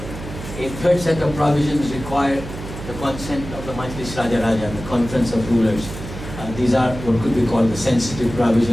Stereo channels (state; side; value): noise; right; hum, 11 dB below the sound